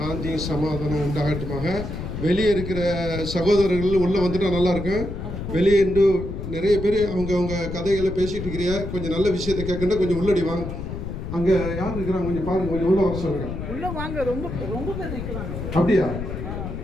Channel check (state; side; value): noise; left; rumble, 6 dB below the sound